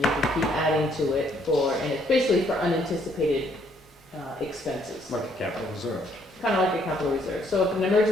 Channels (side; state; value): both; normal; correlation 0.67